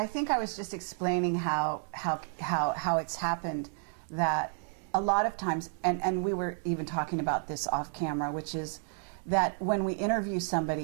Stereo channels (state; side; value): silent; left; 56 dB below the other